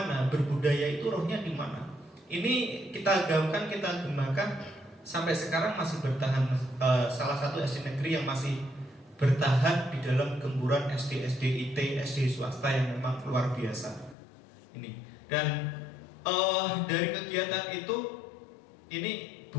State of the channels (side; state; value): right; drops out; at 14.2 s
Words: berbudaya itu rohnya di mana. Ini kita gaungkan, kita kembangkan sampai sekarang masih bertahan. Salah satu SD negeri yang masih bertahan di dalam gempuran SD IT, SD swasta yang memang luar biasa. Ini dan dari kegiatan itu ini